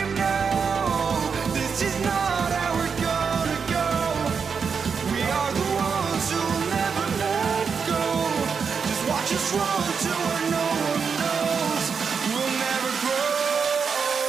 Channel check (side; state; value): left; quieter; 6.0 dB